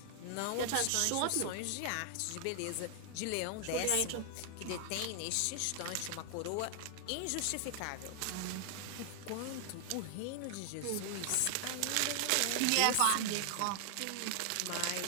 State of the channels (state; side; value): different; both; correlation 0.00